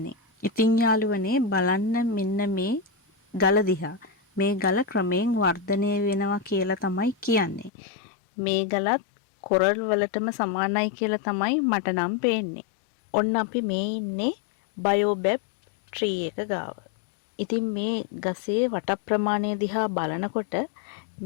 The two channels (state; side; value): drops out; right; at 7.7 s